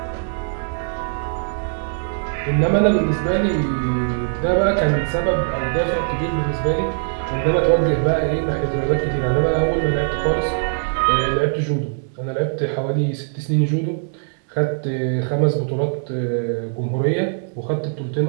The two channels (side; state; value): left; silent; 65 dB below the other